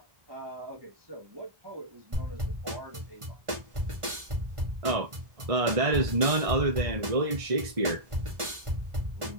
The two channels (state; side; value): late; left; 1.4 ms